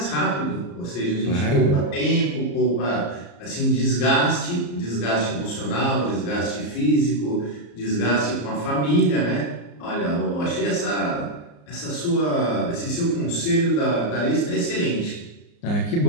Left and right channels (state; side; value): late; right; 34 ms